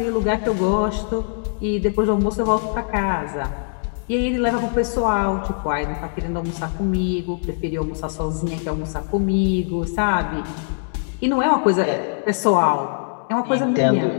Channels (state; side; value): silent; right; digital silence